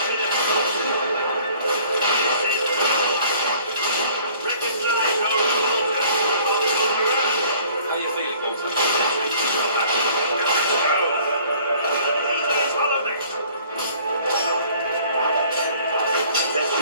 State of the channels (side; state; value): both; inverted; correlation -0.54